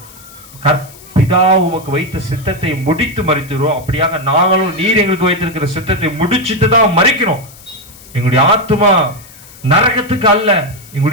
பிதா உமக்கு வைத்த சித்தத்தை முடித்து மரிக்கிறோம், அப்படியாக நாங்களும் நீர் எங்களுக்கு வைத்திருக்கிற சித்தத்தை முடிச்சுட்டு தான் மரிக்கிறோம். எங்களுடைய ஆத்மா நரகத்துக்கு அல்ல,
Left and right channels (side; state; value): left; noise; hiss, 21 dB below the sound